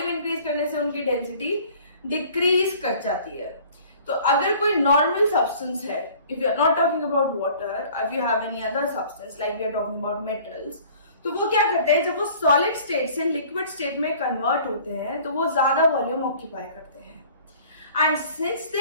इंक्रीज करने से उनकी डेंसिटी डिक्रीज कर जाती है। तो अगर कोई नॉर्मल सब्सटेंस है, if you are not talking about water, if you have any other substance like we are talking about metals, तो वो क्या करते हैं जब वो सॉलिड स्टेट से लिक्विड स्टेट में कन्वर्ट होते हैं तो वो ज्यादा वॉल्यूम ऑक्यूपाई करते हैं and since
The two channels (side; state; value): both; inverted; correlation -0.51